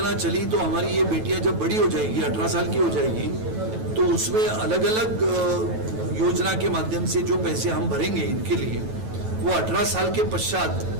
चली तो हमारी ये बेटियां जब बड़ी हो जाएगी, 18 साल की हो जाएगी, तो उसमें अलग अलग योजना के माध्यम से जो पैसे हम भरेंगे इनके लिए, वो 18 साल के पश्चात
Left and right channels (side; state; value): left; late; 9.2 ms